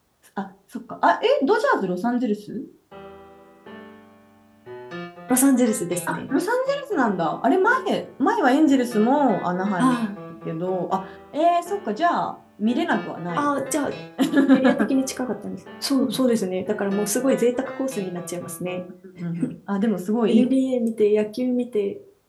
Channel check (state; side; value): identical; both; correlation 1.00